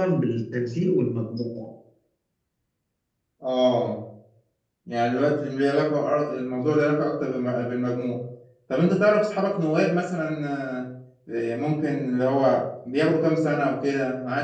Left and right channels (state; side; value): identical; both; correlation 1.00